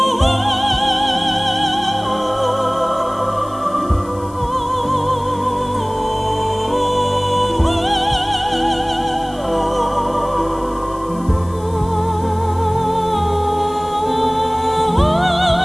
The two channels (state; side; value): noise; left; hiss, 24 dB below the sound